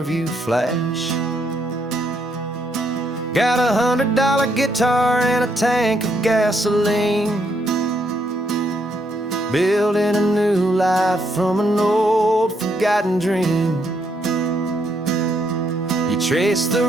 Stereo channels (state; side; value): normal; both; correlation 0.74